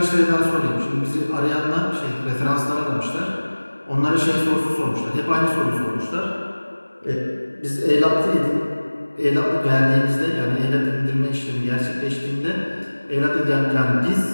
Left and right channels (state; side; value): inverted; both; correlation -1.00